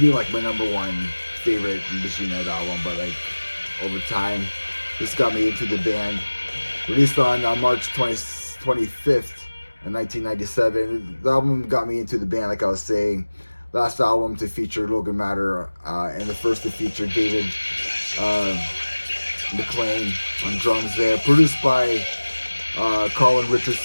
like my number 1 favorite Machine Head album, but like over time, this got me into the band. Released on March 25th. In 1997, the album got me into the band, like I was saying. Last album to feature Logan Matter, and the first to feature David McLean on drums there. Produced by Colin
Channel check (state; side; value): inverted; both; correlation -1.00